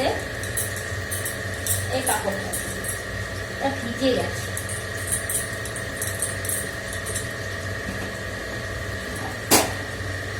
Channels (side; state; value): both; identical; correlation 1.00